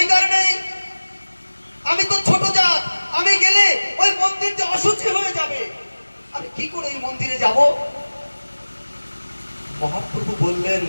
নেই। আমি তো ছোট জাত, আমি গেলে ওই মন্দির যে অশুচি হয়ে যাবে, আমি কি করে ওই মন্দিরে যাব? মহাপ্রভু বললেন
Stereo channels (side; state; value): both; inverted; correlation -1.00